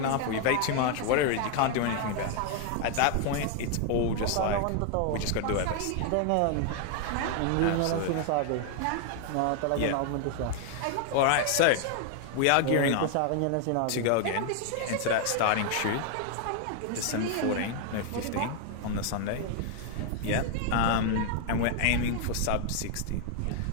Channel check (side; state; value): both; different; correlation 0.00